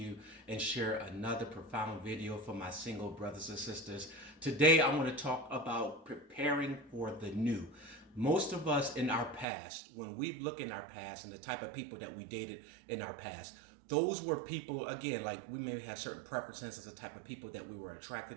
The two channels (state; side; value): drops out; left; at 9.5 s